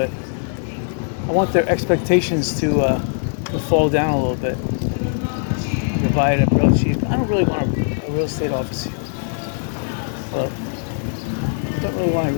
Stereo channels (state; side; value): silent; right; digital silence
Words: I want their expectations to fall down a little bit. I can buy it at real cheap. I don't really want a real estate office here. Well, I don't really want a